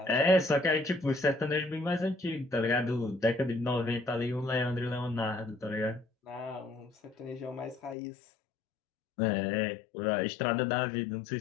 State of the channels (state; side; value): drops out; right; at 8.0 s